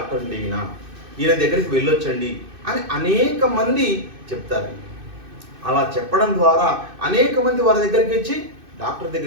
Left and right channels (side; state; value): left; late; 2.6 ms